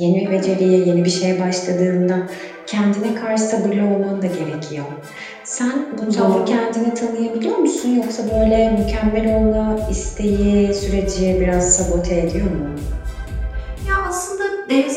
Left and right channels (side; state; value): both; identical; correlation 1.00